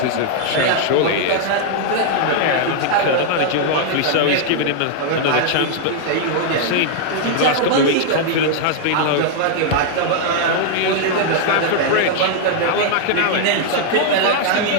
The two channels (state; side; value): different; both; correlation -0.01